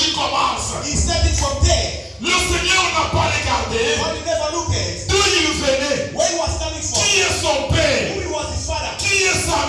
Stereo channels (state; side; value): identical; both; correlation 1.00